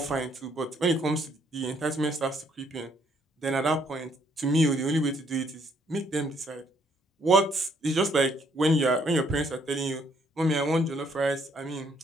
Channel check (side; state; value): both; normal; correlation 0.67